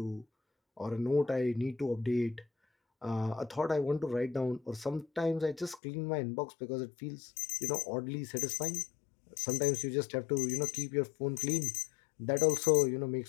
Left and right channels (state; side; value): drops out; right; at 5.8 s